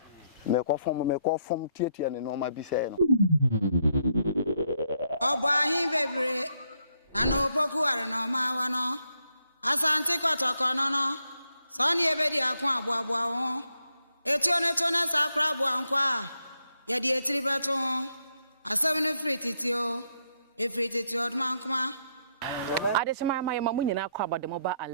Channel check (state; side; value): inverted; both; correlation -0.77